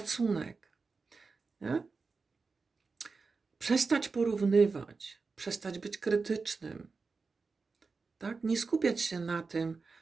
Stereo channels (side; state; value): left; quieter; 4.4 dB